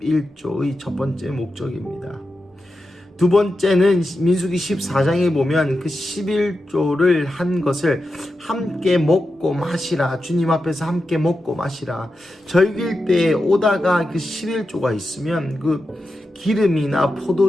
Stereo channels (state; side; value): normal; both; correlation 0.89